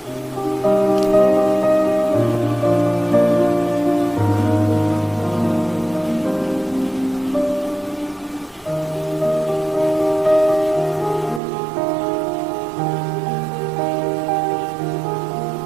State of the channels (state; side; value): drops out; left; at 11.4 s